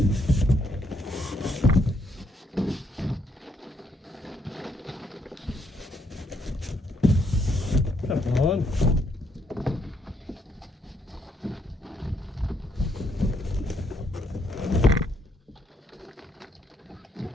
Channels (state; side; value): normal; both; correlation 0.73